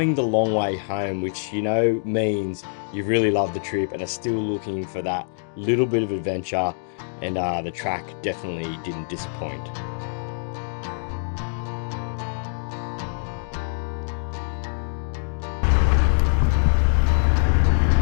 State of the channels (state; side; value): silent; right; digital silence